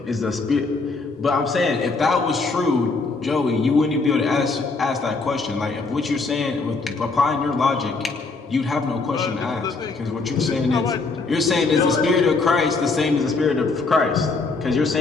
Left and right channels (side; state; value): right; quieter; 4.0 dB